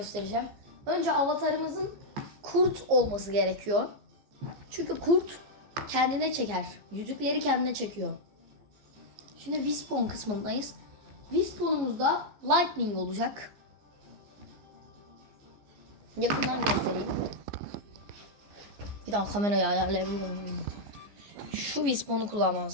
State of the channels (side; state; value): left; late; 14 ms